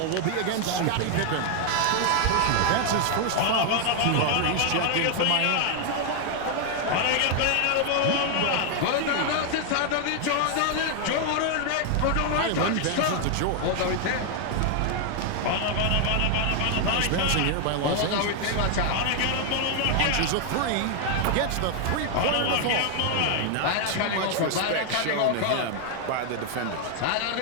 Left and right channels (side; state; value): both; different; correlation 0.00